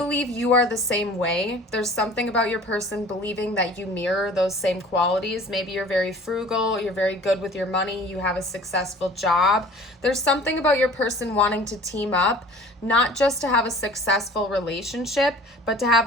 you are the same way. There's something about your person believing that you mirror those same qualities. Maybe you're very frugal, you're very good with your money, you have a successful job. There's something about your person wanting to team up, not just to have a successful relationship, but to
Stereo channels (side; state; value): both; normal; correlation 0.46